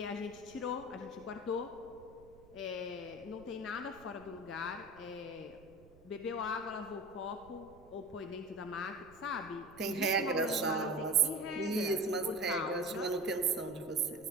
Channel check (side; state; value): right; noise; rumble, 23 dB below the sound